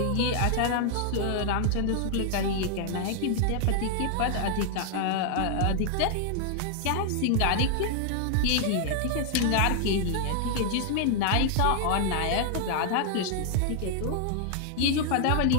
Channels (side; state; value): both; different; correlation 0.00